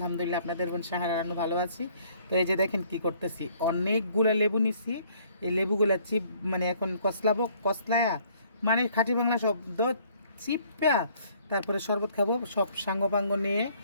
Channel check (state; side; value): inverted; both; correlation -0.61